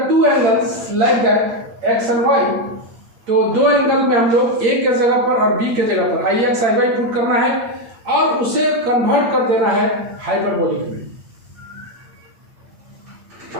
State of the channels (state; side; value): late; left; 8.7 ms